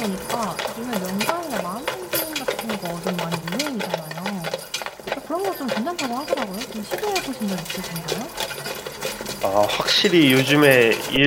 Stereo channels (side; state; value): both; identical; correlation 1.00